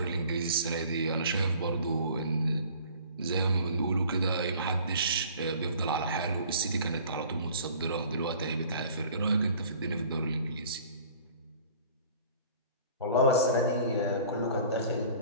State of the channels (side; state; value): both; inverted; correlation -0.49